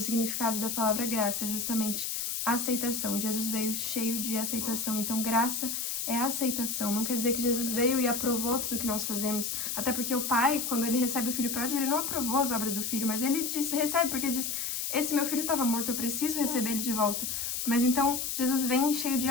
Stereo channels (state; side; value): noise; left; hiss, 2 dB below the sound